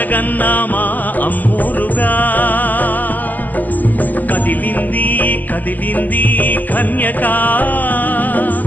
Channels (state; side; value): late; right; 0.083 ms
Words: మా అమ్మోరుగా కదిలింది కదిలింది కన్యక